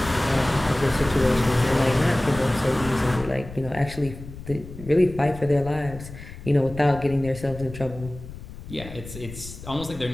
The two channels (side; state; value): left; noise; rumble, 13 dB below the sound